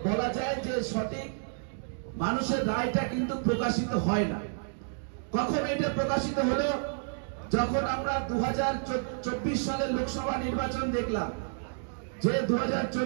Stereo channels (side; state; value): left; silent; digital silence